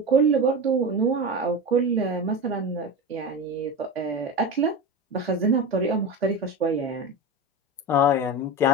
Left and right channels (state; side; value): normal; both; correlation 0.24